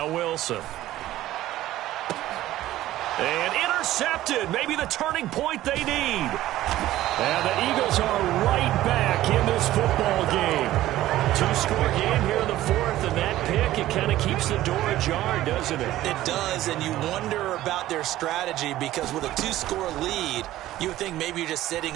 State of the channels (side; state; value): left; quieter; 14.8 dB